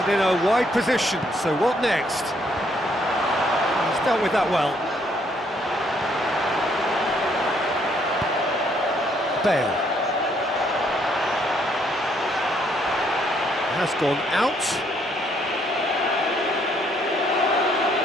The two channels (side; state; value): both; normal; correlation 0.69